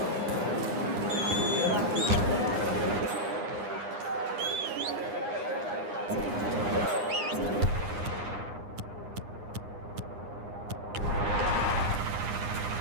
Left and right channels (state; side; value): late; left; 9.8 ms